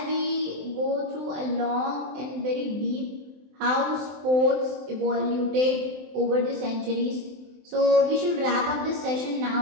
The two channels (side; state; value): left; late; 23 ms